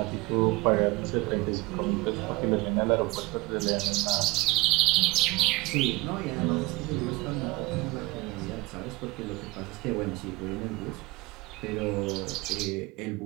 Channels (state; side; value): quieter; left; 22.0 dB